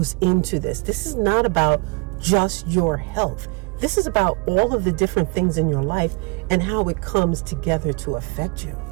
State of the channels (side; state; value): left; quieter; 30.7 dB